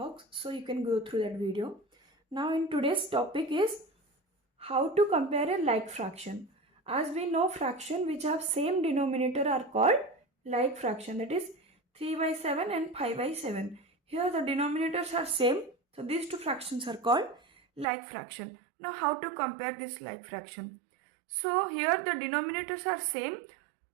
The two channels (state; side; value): drops out; left; at 17.9 s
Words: so you can go through that video. Now in today's topic is how to compare a like fraction. As we know, fraction which have same denominator are called like fraction, that is 3 by 7 and 5 by 7. Here the denominators are same, so these two fractions are called like fraction. Now how to compare this like fraction? So here the denominators are same,